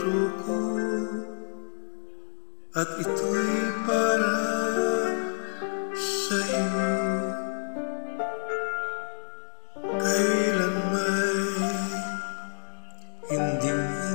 ko at ito'y para sa'yo. Kailan may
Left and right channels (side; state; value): right; silent; 59 dB below the other